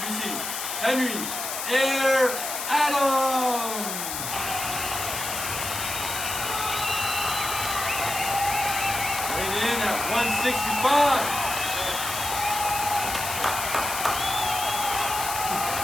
Henry Air Adams. Weighing in at 165.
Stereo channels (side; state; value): left; noise; hiss, 4 dB below the sound